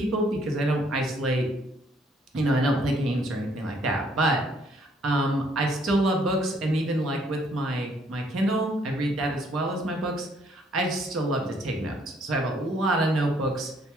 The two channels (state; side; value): normal; both; correlation 0.66